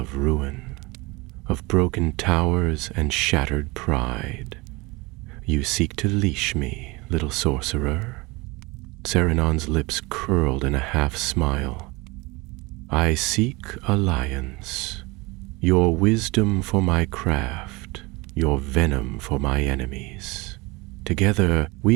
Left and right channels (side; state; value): left; quieter; 24.3 dB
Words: ruin, of broken towers and shattered pride. You seek to leash me, little sorcerer. Saruman's lips curled in a half-smile. I seek alliance, your wisdom for my craft, your venom for my enemies. Together